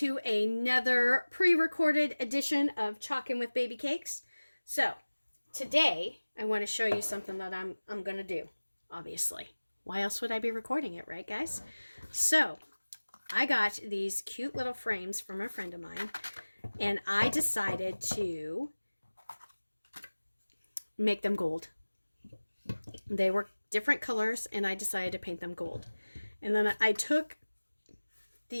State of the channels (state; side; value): inverted; both; correlation -1.00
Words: another pre-recorded edition of Chalkin' with Babycakes. So, today I want to show you something that I'm going to do, obviously. Why else would I be recording it, right guys? So, I got these cute little frames from a friend of mine, and I decided to make them gold. They were different colors, and I decided to paint them gold. And then I took